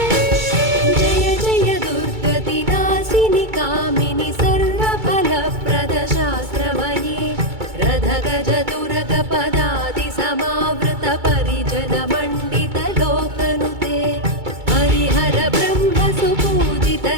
जय दुर्गतिनाशिनि कामिनि सर्वफलप्रदशास्त्रमये रथगजदुरगपदादि समावृत परिजनमण्डितलोकनुते हरिहर ब्रह्म सुपूजित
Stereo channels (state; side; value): late; left; 2.2 ms